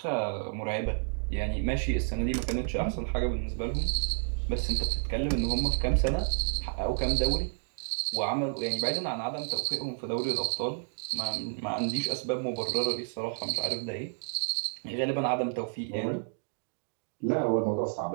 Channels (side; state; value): left; silent; digital silence